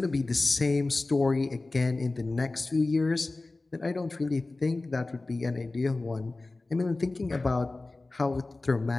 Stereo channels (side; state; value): right; quieter; 3.2 dB